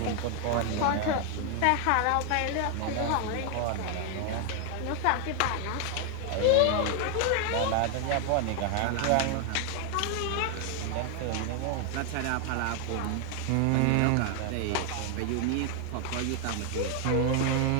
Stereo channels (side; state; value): both; different; correlation 0.00